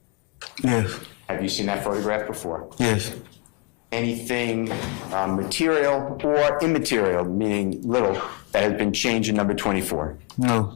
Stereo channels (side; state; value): right; quieter; 25.7 dB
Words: Yes. Have you seen that photograph before? Yes. Anything material or immaterial, meaning little, that has been changed in number 24?